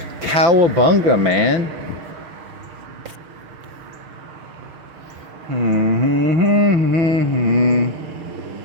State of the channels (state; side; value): late; left; 5.9 ms